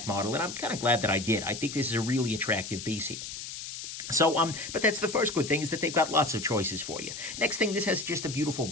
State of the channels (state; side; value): noise; left; hiss, 9 dB below the sound